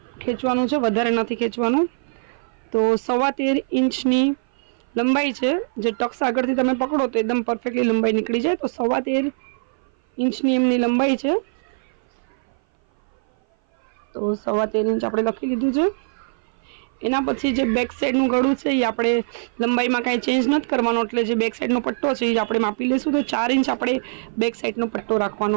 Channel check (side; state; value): left; silent; 57 dB below the other